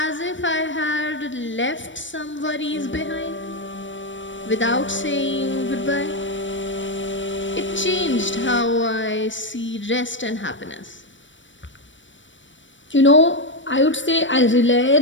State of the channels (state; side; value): late; right; 0.55 ms